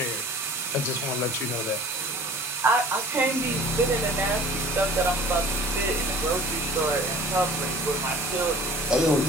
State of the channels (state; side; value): normal; both; correlation 0.47